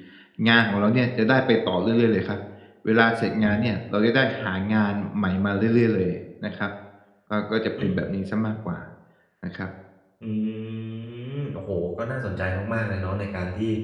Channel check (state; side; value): identical; both; correlation 1.00